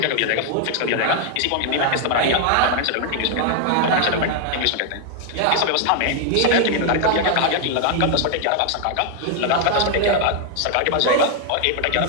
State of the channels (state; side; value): different; both; correlation 0.00